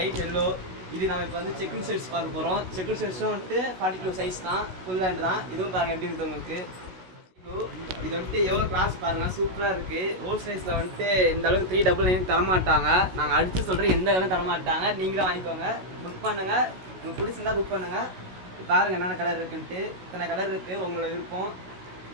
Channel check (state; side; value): late; left; 16 ms